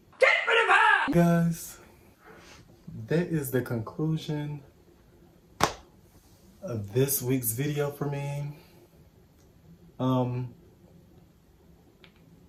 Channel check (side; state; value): both; identical; correlation 1.00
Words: Get rid of her! Guys, that is the conclusion of this week's video for me.